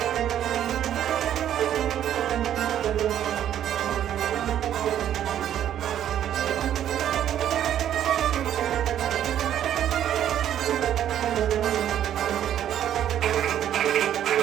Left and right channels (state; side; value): quieter; left; 10.7 dB